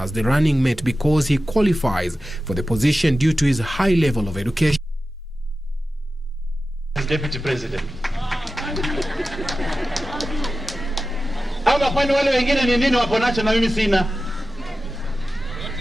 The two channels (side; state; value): both; normal; correlation 0.94